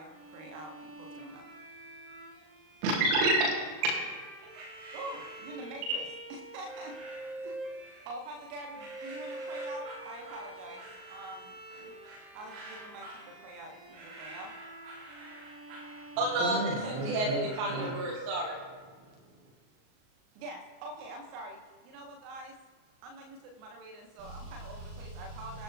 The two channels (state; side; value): late; left; 38 ms